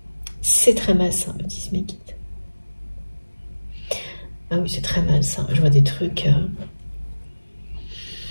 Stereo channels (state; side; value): inverted; both; correlation -1.00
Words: C'est très malsain, me disent mes guides. Ah oui, c'est très malsain. Je vois des trucs...